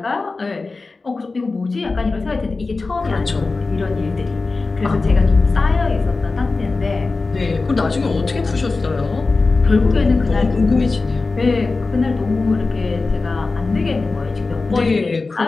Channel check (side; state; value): right; quieter; 3.8 dB